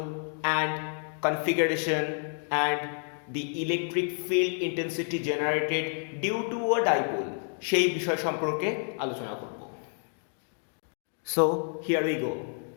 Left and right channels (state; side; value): silent; right; 57 dB below the other